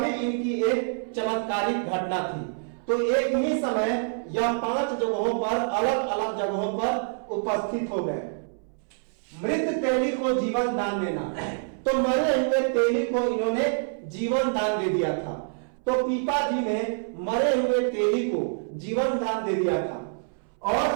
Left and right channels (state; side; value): silent; left; 61 dB below the other